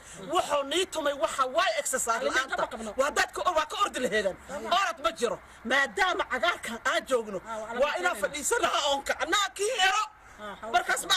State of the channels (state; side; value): identical; both; correlation 1.00